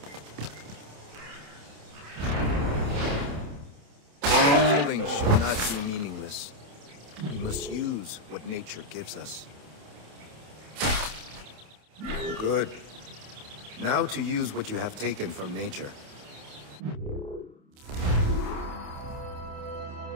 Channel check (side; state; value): left; late; 28 ms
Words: Killing should not be meaningless. We must use what nature gives us. Good. Now to use what you have taken from nature.